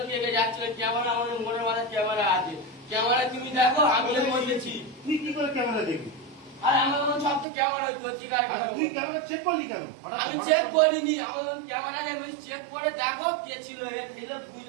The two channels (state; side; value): drops out; left; at 7.5 s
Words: কে কে যাচ্ছিল ক্যামেরা আমাদের মোড়ের মাথায় ক্যামেরা আছে ক্যামেরা তুমি দেখো আমি এর মধ্যেছি তুই কি করে ক্যামেরা দেখবি? আর আমার সব তো ক্যামেরা হচ্ছে ঠিক আছে তুই ক্যামেরা চেক করলি কেন? আমি চেক করিনি আমার ক্যামেরা আমি চেক করে দেখো কে ছিল এ ছিল